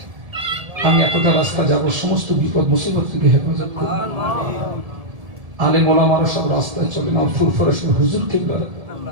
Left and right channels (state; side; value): late; left; 1.7 ms